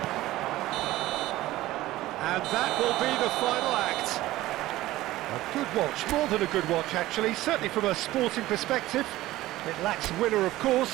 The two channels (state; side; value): quieter; left; 16.6 dB